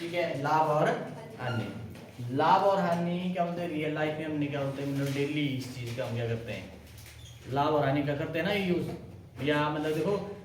है, लाभ और हानि। लाभ और हानि क्या बोलते हैं, रियल लाइफ में हमने क्या बोलते हैं, मतलब डेली इस चीज का हम क्या करते हैं, लाभ और हानि का करते हैं ना यूज, या मतलब देखो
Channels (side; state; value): both; identical; correlation 1.00